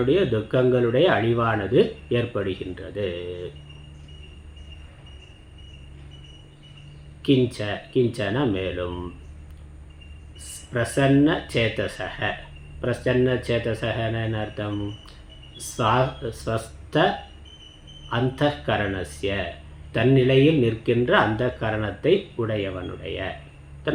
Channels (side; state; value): both; identical; correlation 1.00